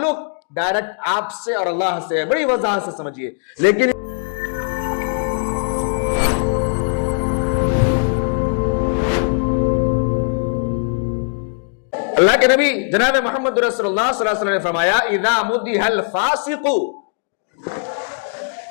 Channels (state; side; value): silent; right; digital silence